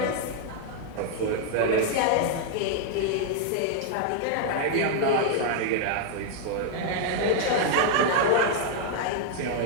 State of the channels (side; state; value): both; different; correlation 0.00